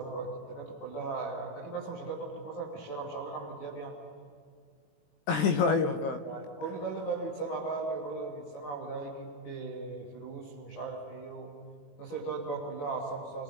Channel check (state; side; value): late; right; 21 ms